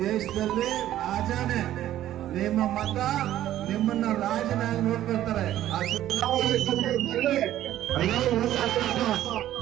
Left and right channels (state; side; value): quieter; left; 12.9 dB